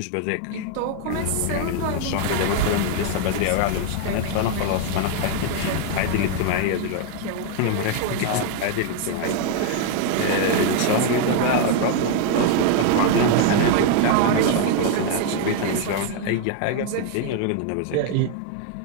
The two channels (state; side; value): different; both; correlation 0.00